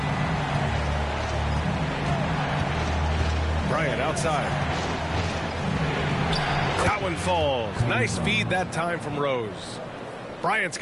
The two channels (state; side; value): identical; both; correlation 1.00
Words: Bryant outside. That one falls. Nice feed that time from Rose. Bryant's